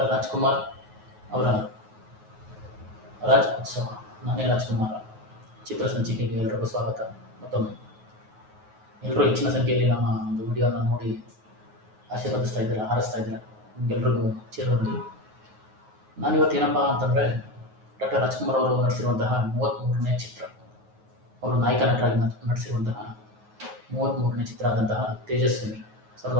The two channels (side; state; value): left; late; 9.4 ms